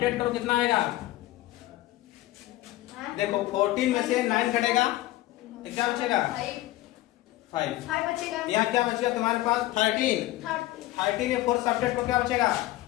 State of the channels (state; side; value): quieter; right; 16.4 dB